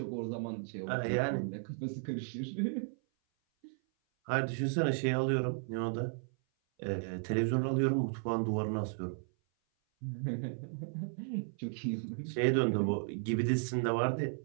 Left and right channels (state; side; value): silent; left; 55 dB below the other